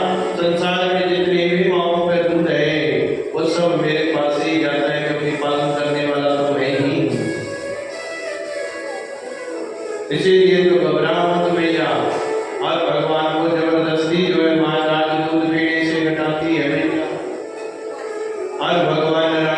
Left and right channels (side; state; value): both; identical; correlation 1.00